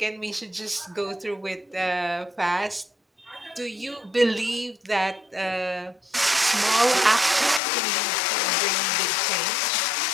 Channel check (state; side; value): drops out; right; at 7.6 s